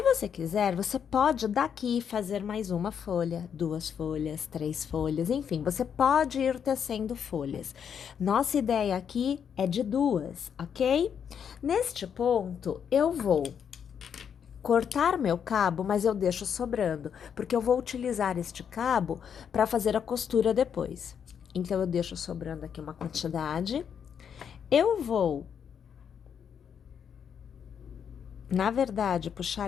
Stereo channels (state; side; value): quieter; right; 7.7 dB